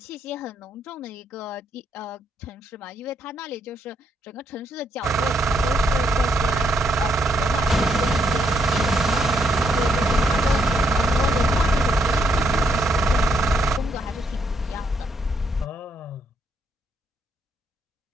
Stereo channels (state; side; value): normal; both; correlation 0.75